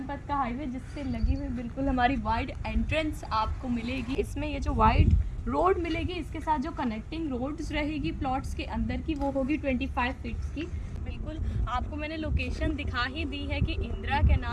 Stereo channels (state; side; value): identical; both; correlation 1.00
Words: पथ का हाईवे जिससे लगी हुई बिल्कुल हमारी वाइड एंट्रेंस आपको मिलेगी। इसमें ये जो वाइड रोड मिलेगी इसके साथ जो कनेक्टिंग रोड्स रहेगी प्लॉट्स के अंदर की वो होगी 25 फीट्स की। बिल्कुल आपको मैंने लोकेशन दिखा ही दी है कि इंदिरा